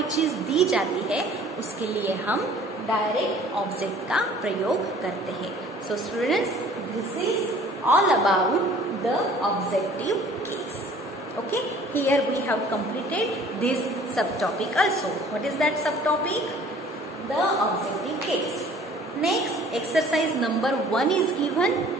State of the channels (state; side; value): normal; both; correlation 0.52